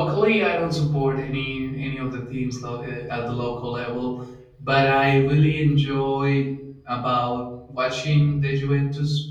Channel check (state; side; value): identical; both; correlation 1.00